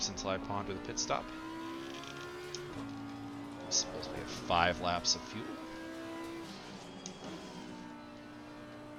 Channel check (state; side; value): identical; both; correlation 1.00